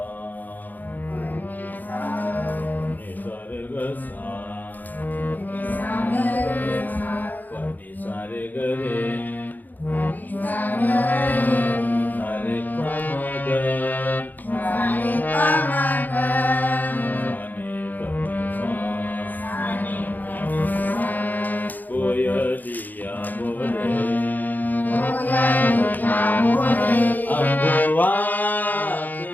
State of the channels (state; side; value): late; right; 0.084 ms